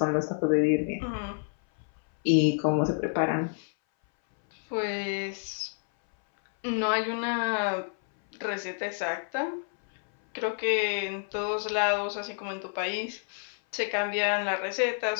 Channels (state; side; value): silent; right; 59 dB below the other